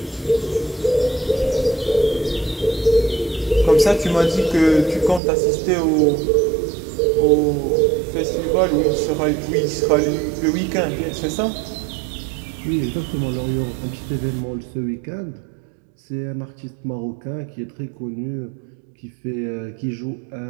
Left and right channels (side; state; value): left; drops out; at 5.2 s